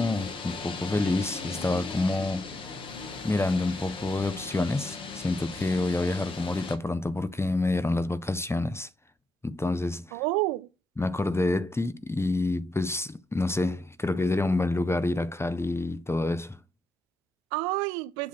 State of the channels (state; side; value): normal; both; correlation 0.81